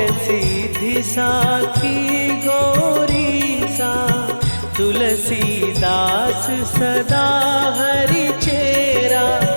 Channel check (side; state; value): both; inverted; correlation -1.00